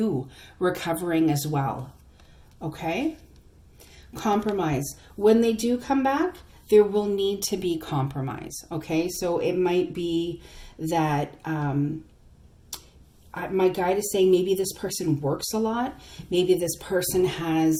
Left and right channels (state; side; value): identical; both; correlation 1.00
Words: recovering as well. Okay? Compromise. When they do come back, there will need to be compromise. Okay? So it might be that my guide is saying maybe this person works a lot. Maybe this person